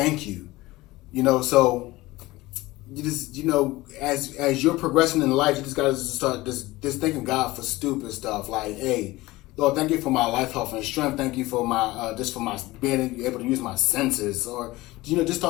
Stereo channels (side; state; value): right; quieter; 19.4 dB